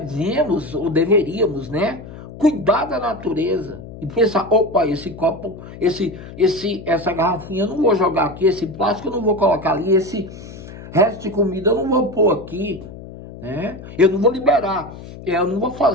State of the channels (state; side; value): noise; left; hum, 14 dB below the sound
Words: ou deveríamos, né, cuidar da natureza. E pensar, opa, esse copo, essa garrafinha eu não vou jogar aqui, esse plástico eu não vou colocar ali, esse resto de comida eu não vou pôr aqui, né? Eu não vou liberar. Eu não vou